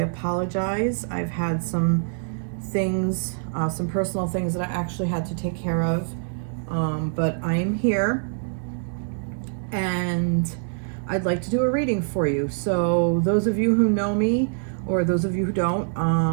I've had some things, some personal things that I actually had to take care of. But I am here and I'd like to do a reading for you. So those of you who know me, or those of you who don't,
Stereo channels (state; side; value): silent; left; digital silence